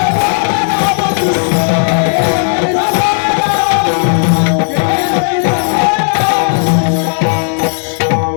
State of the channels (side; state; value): right; silent; digital silence